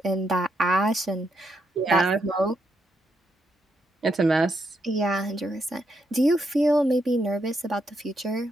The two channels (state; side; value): normal; both; correlation 0.79